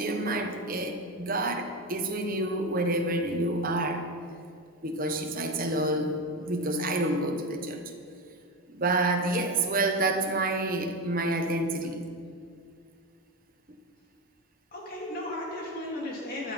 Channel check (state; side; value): normal; both; correlation 0.17